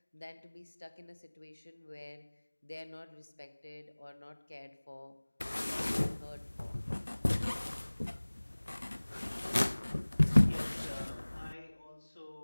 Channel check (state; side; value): inverted; both; correlation -1.00